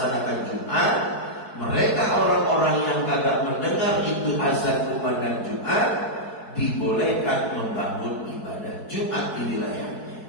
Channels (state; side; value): late; right; 4.6 ms